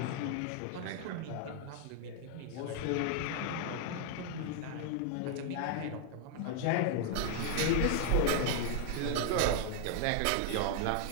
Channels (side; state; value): both; different; correlation 0.00